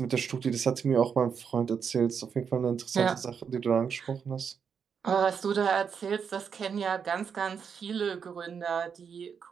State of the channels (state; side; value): quieter; left; 6.7 dB